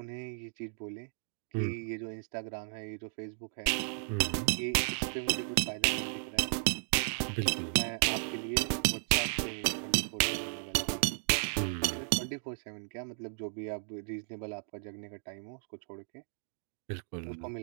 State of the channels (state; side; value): silent; left; digital silence